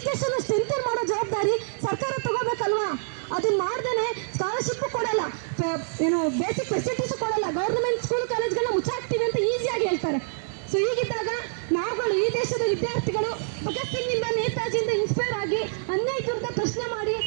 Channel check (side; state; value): left; silent; digital silence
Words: ಸ್ಟ್ರೆಂಥನ್ ಮಾಡೋ ಜವಾಬ್ದಾರಿ ಸರ್ಕಾರ ತಗೋಬೇಕಲ್ವಾ? ಅದನ್ನ ಮಾಡ್ದೇನೆ ಸ್ಕಾಲರ್ಶಿಪ್ ಕೊಡಲ್ಲ, ಏನು ಬೇಸಿಕ್ ಫೆಸಿಲಿಟೀಸ್ ಕೊಡಲ್ಲ, ಗೌರ್ಮೆಂಟ್ ಸ್ಕೂಲ್ ಕಾಲೇಜ್ಗಳನ್ನ ಮುಚ್ಚಾಕ್ತೀವಿ ಅಂತ ಈಸಿಯಾಗಿ ಹೇಳ್ತಾರೆ. ಸೊ ಹೀಗಿದ್ದಾಗ ನಾವುಗಳು ಈ ದೇಶದ ವಿದ್ಯಾರ್ಥಿಗಳು ಭಗತ್ ಸಿಂಗ್ನಿಂದ ನೇತಾಜಿಯಿಂದ ಇನ್ಸ್ಪೈರ್ ಆಗಿ ಅನ್ಯಾಯಕ್ಕಿಂತ ಪ್ರಶ್ನೆ ಮಾಡಿ